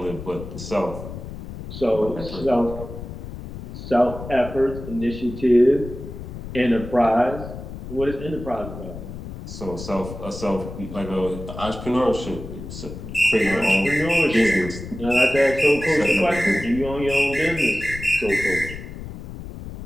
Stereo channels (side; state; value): left; noise; rumble, 10 dB below the sound